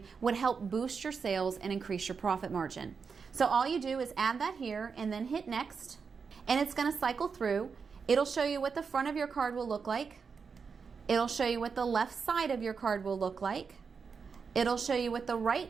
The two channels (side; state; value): left; quieter; 5.6 dB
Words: would help boost your sales and increase your profit margin. So all you do is add that here and then hit next, and it's going to cycle through. It'll show you what the front of your card will look like. It'll show you what the left side of your card will look like. It'll show you what the